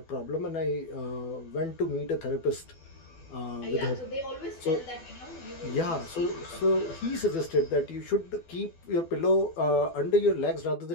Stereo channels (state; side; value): late; right; 12 ms